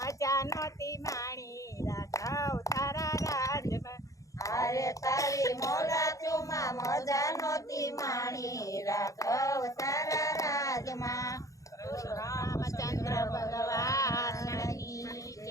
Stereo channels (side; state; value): right; late; 0.16 ms